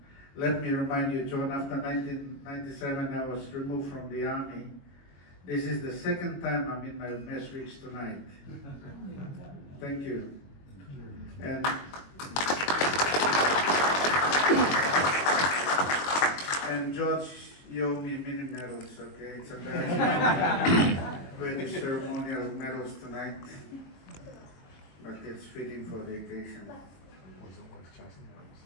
let me remind you, John, after 1997, I was removed from the army. This is the second time I'm in my mess reach tonight. Thank you. And George, you owe me many medals, okay? It's embarrassing. Very ceremonial medals tonight, but it's fitting for the occasion.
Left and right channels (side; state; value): right; late; 22 ms